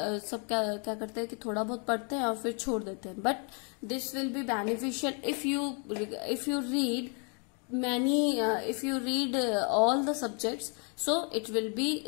करते हैं कि थोड़ा बहुत पढ़ते हैं और फिर छोड़ देते हैं. But this will be beneficial if you read if you read all the subjects, so it will be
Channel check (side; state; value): right; quieter; 37.7 dB